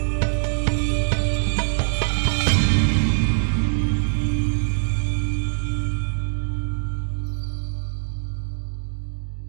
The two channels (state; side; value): silent; left; digital silence